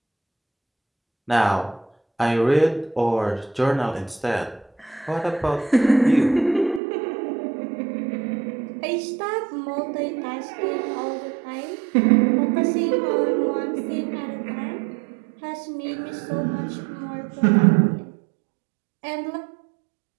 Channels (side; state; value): left; drops out; at 6.8 s